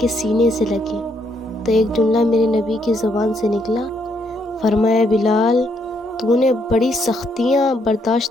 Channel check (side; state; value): both; normal; correlation 0.74